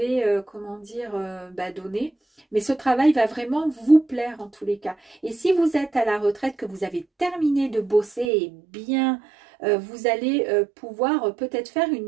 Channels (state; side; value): drops out; left; at 8.3 s